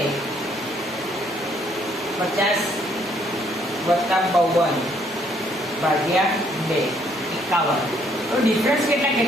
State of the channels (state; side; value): normal; both; correlation 0.67